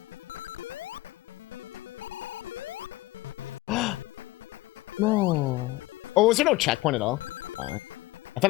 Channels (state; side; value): quieter; right; 19.0 dB